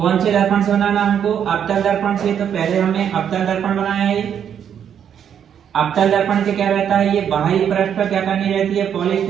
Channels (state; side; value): quieter; left; 8.7 dB